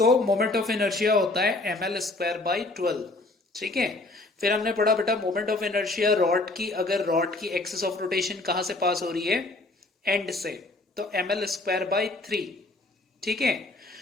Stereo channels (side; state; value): right; quieter; 3.0 dB